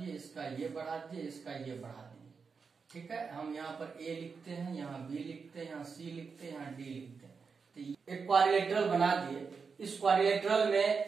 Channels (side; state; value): left; quieter; 5.3 dB